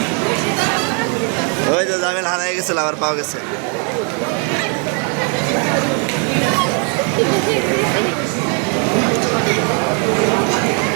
ওই যে জামিল হারাই গেছিল, আবার পাওয়া গেছে।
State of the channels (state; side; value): quieter; left; 39.2 dB